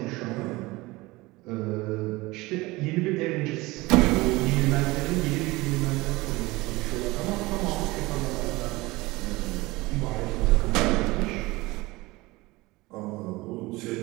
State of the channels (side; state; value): left; quieter; 21.3 dB